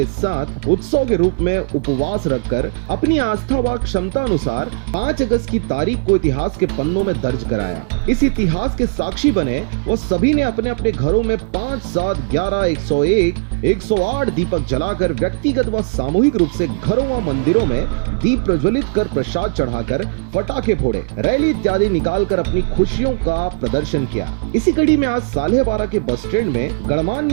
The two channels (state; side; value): quieter; left; 37.0 dB